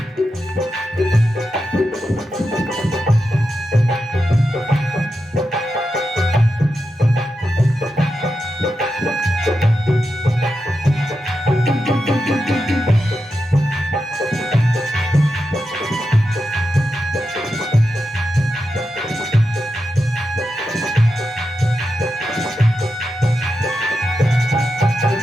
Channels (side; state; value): both; normal; correlation 0.88